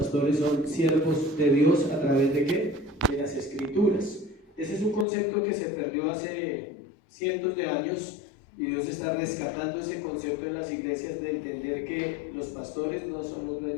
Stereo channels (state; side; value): drops out; right; at 5.1 s